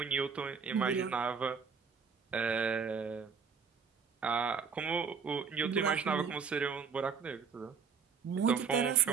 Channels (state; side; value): quieter; left; 6.1 dB